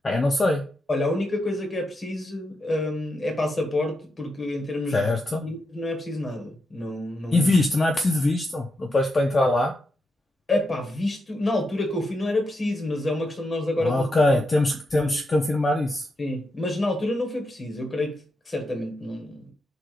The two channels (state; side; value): normal; both; correlation 0.85